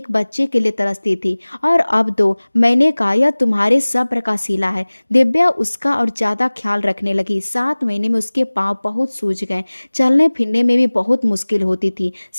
बच्चे के लिए तरसती थी, और अब दो। मैंने कहा, यह तुम्हारे सब्र का सिला है। दिव्या उसका और ज्यादा ख्याल रखने लगी। 7 महीने में उसके पांव बहुत सूज गए, चलने फिरने में भी बहुत मुश्किल होती थी,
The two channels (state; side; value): inverted; both; correlation -1.00